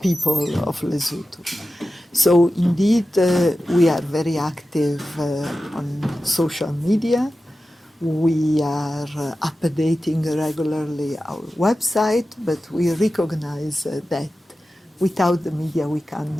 of Lesotho. So indeed, we are very active on social media. We are updating regularly our website, but we recognize that without the media we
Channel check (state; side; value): normal; both; correlation 0.93